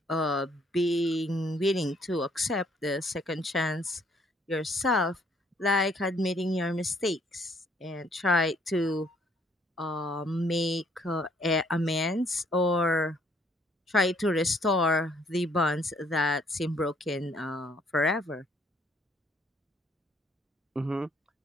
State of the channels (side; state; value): both; normal; correlation 0.65